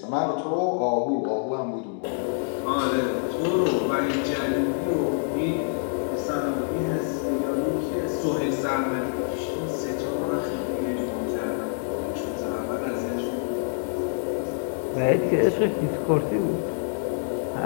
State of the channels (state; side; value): silent; right; digital silence